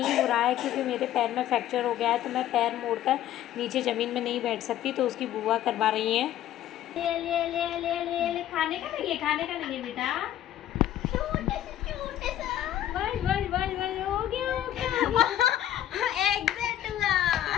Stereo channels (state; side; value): quieter; right; 12.1 dB